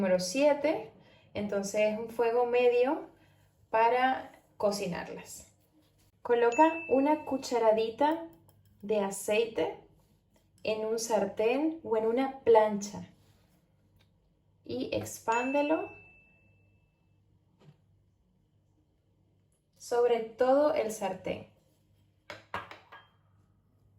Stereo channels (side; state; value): both; identical; correlation 1.00